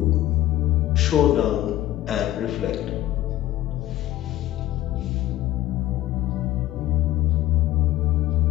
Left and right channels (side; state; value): right; quieter; 14.5 dB